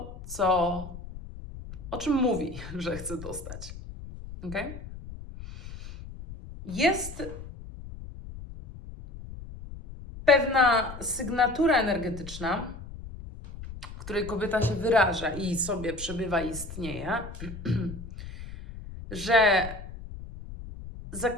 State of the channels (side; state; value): left; noise; rumble, 12 dB below the sound